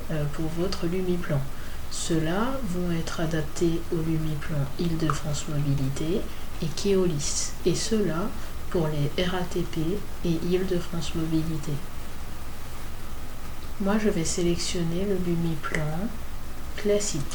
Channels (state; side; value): identical; both; correlation 1.00